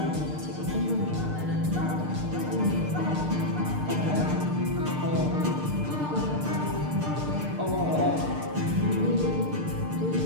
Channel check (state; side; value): late; left; 6.6 ms